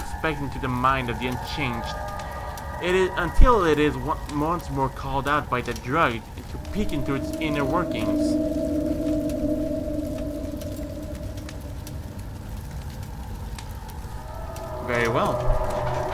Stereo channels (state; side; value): identical; both; correlation 1.00